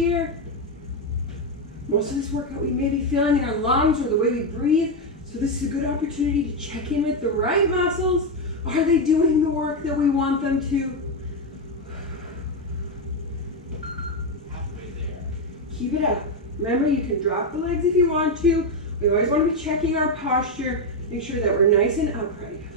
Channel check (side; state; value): both; normal; correlation 0.07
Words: Most of this workout we may be feeling in our lungs or the way we breathe. So this is a good opportunity to check in with the right muscles. Are they doing the work that we want them to? Keep it up. Remember, you can drop the legs if you want to. We always want to be checking our posture. Make sure that we're nice and upright.